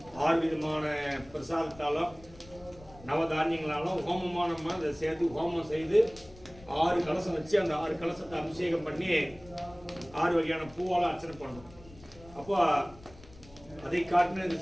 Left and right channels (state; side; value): noise; left; rumble, 21 dB below the sound